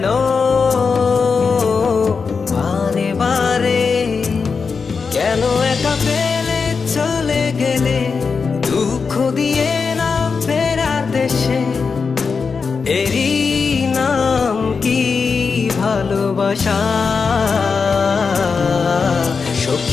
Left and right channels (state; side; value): quieter; right; 5.2 dB